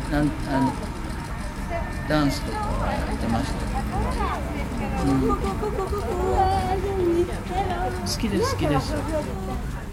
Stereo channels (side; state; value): both; identical; correlation 1.00